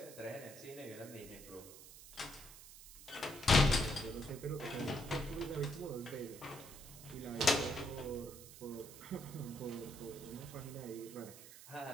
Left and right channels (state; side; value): noise; right; hiss, 16 dB below the sound